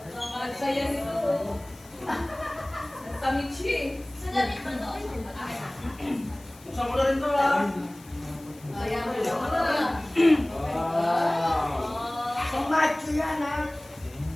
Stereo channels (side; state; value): left; noise; hiss, 23 dB below the sound